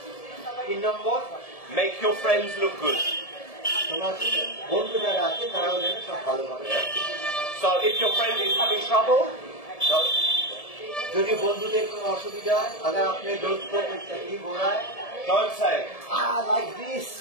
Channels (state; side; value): late; right; 1.7 ms